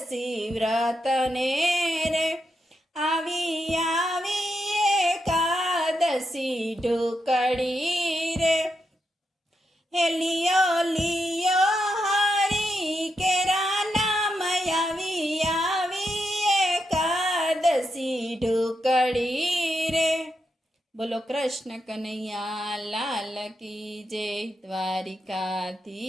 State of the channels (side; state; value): both; normal; correlation 0.84